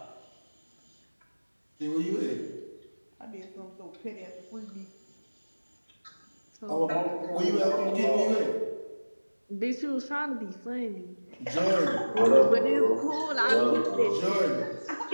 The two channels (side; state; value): both; inverted; correlation -1.00